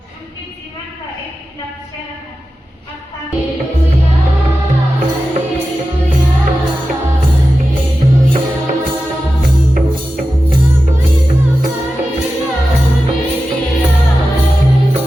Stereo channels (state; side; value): normal; both; correlation 0.93